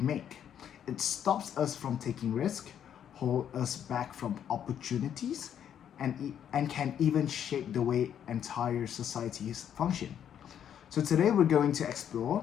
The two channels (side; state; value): right; quieter; 9.3 dB